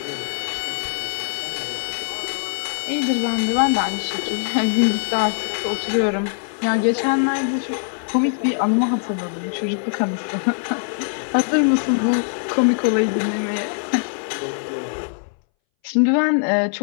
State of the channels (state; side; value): silent; right; 62 dB below the other